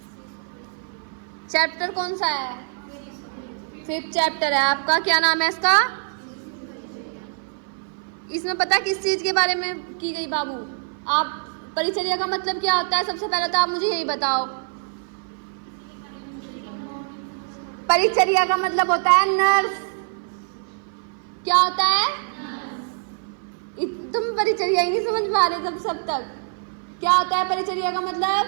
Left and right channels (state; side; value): silent; left; 58 dB below the other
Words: चैप्टर कौन सा है? 5th चैप्टर है आपका। क्या नाम है इसका? इसमें पता किस चीज के बारे में की गई बाबू? आप परिचर्या का मतलब क्या होता है? सबसे पहले तो आप मुझे यही बताओ। परिचर्या का मतलब होता है नर्स। क्या होता है? तुम परिचर्या ही नहीं समझ पा रहे सब तक। क्या होता है परिचर्या का मतलब?